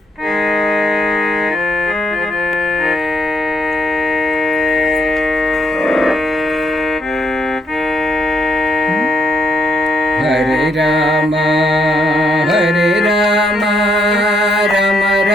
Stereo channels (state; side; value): normal; both; correlation 0.76